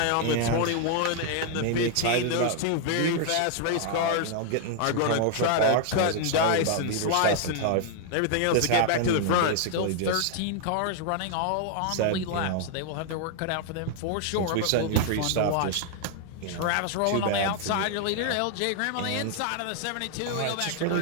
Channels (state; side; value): different; both; correlation 0.00